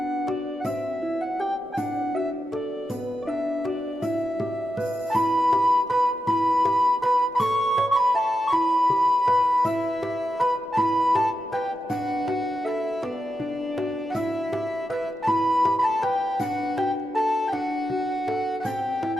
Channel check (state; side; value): normal; both; correlation 0.88